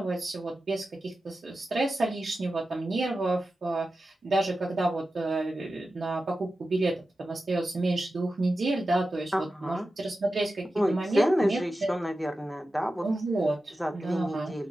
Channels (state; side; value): normal; both; correlation 0.93